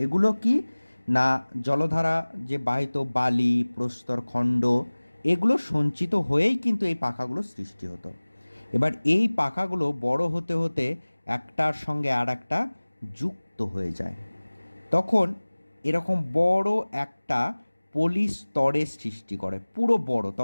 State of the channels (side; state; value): both; inverted; correlation -1.00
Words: এগুলো কি না, জলধারা যে বাহিত বালি প্রস্তর খণ্ড, এগুলো সঞ্চিত হয়েই কিন্তু এই পাখাগুলো সৃষ্টি হতো। এবার এই পাখাগুলো বড় হতে হতে একটার সঙ্গে আর একটা যুক্ত হয়ে যায়, তখন এরকম বড় একটা পলি স্তরের সৃষ্টি করে, পুরো বড়।